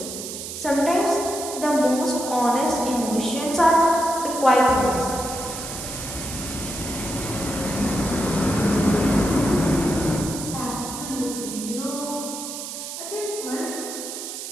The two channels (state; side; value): noise; right; hiss, 8 dB below the sound